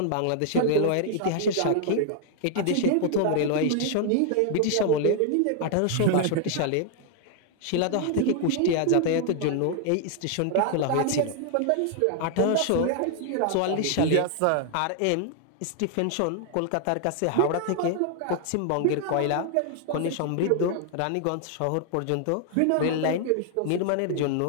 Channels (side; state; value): both; different; correlation 0.00